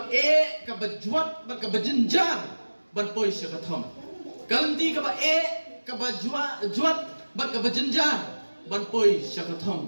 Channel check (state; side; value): inverted; both; correlation -1.00